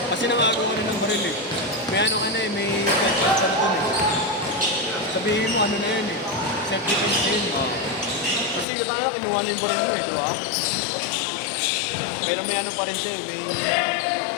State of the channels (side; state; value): right; drops out; at 8.7 s